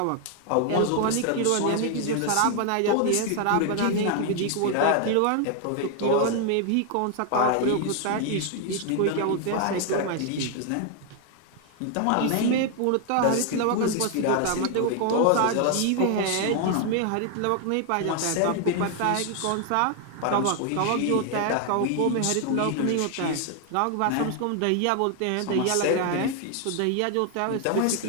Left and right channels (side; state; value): both; different; correlation 0.00